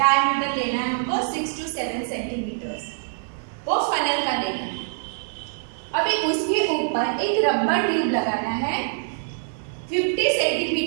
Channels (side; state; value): left; silent; 55 dB below the other